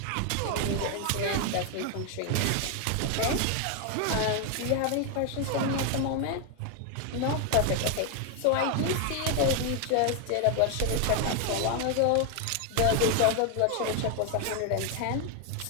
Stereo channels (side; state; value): both; different; correlation 0.01